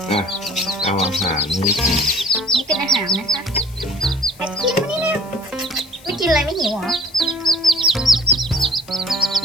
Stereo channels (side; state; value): left; noise; hiss, 23 dB below the sound